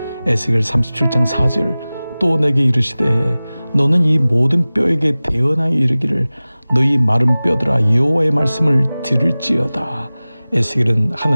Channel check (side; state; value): both; inverted; correlation -0.98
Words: 에스겔 37장 4절, 또 내게 이르시되 너는 이 모든 뼈에게 대언하여 이르기를 너희 마른 뼈들아 여호와의 말씀을 들을지어다. 에스겔은